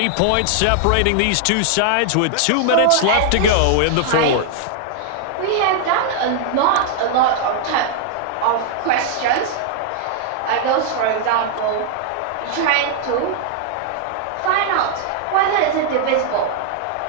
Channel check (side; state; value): both; different; correlation 0.00